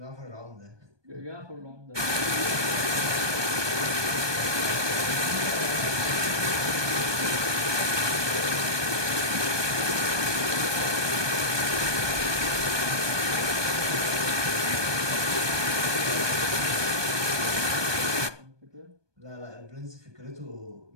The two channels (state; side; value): late; left; 1.2 ms